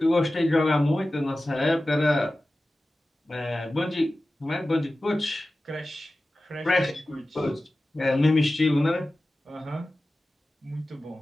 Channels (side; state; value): both; normal; correlation 0.95